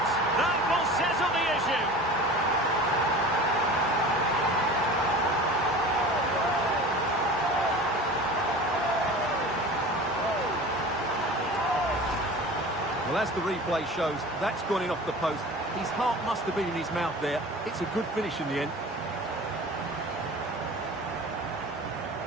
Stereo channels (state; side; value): normal; both; correlation 0.38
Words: that will settle the issue. Well, as the replay shows, that's gone in off the post. His heart must have been in his mouth there. It's a good finish in the end.